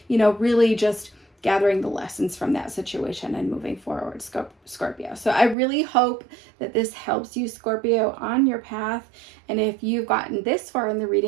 Really just gathering the lessons from that situation and moving forward, Scorpio. So I really hope that this helps you, Scorpio, on your path. And if you've gotten this far in the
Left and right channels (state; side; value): drops out; left; at 5.6 s